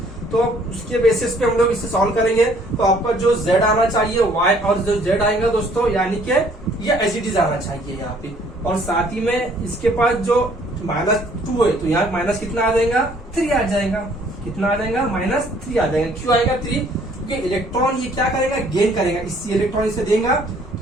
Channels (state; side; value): normal; both; correlation 0.60